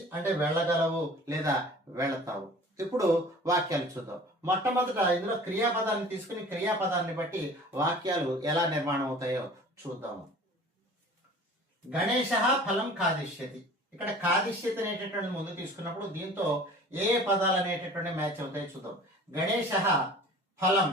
అంటే వెళ్ళగలవు లేదా వెళతావు. ఇప్పుడు వాక్యాలు చూద్దాం. మొట్టమొదట ఇందులో క్రియాపదాన్ని తీసుకుని క్రియాపదాన్ని బట్టి వాక్యాలు ఎలా నిర్మాణం అవుతాయో చూద్దాము. గణేశ ఫలం కాదిష్యతి. ఇక్కడ కాదిష్యతి అనేటటువంటి ముందు తీసుకున్నప్పుడు దీంతో ఏ పదాలు అనేటటువంటి మ్యాచ్ అవుతాయో చూద్దాం. గణేశ ఫలం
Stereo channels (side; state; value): both; normal; correlation 0.45